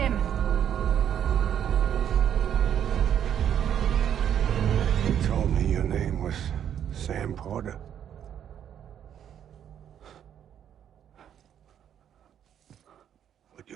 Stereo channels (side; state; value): left; quieter; 9.5 dB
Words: You told me your name was Sam Porter. But